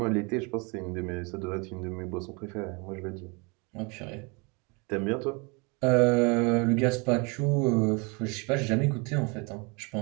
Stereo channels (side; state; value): left; quieter; 30.5 dB